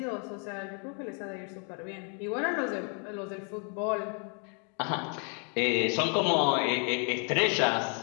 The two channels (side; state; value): right; quieter; 39.1 dB